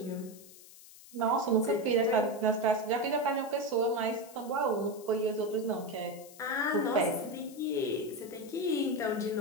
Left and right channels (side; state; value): left; noise; hiss, 20 dB below the sound